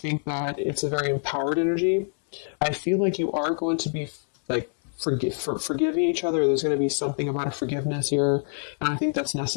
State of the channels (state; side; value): silent; right; 58 dB below the other